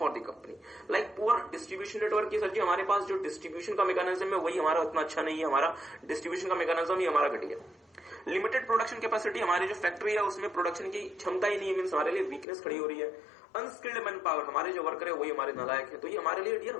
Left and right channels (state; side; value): drops out; right; at 12.5 s